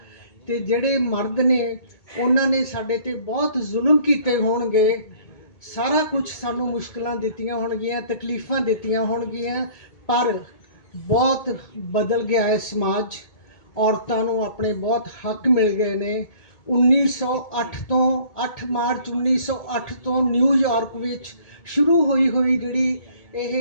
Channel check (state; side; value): late; right; 2.2 ms